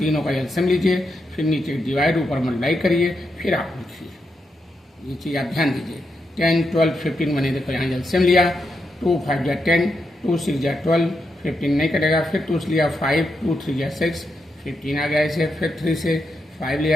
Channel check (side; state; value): both; normal; correlation 0.84